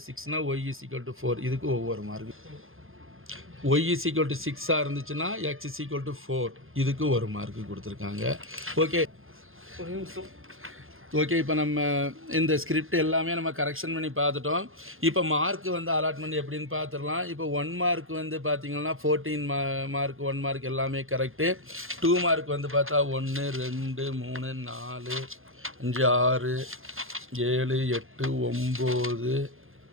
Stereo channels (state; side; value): late; left; 0.60 ms